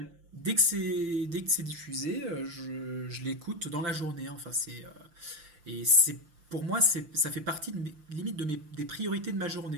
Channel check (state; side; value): late; left; 6.5 ms